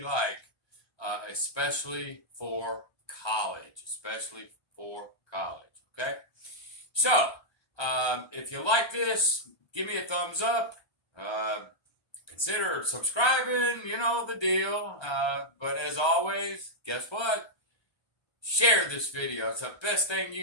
especially for college, okay? So, if you like this, give me a thumbs up. Consider subscribing, you know the deal. But as always, guess what? Share this video. It's the best thing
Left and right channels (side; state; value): right; late; 1.3 ms